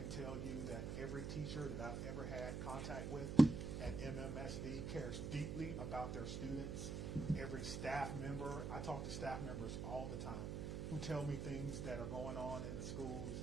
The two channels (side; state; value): right; noise; hum, 3 dB below the sound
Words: tell you that every teacher that I've ever had contact with at MMSD cares deeply about their students. Every staff member, I talk to staff members all the time who tell me things that are going on in the schools